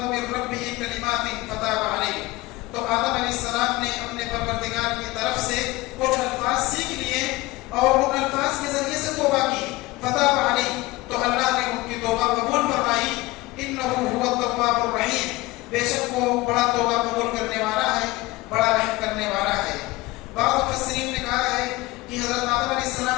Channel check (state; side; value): quieter; right; 20.3 dB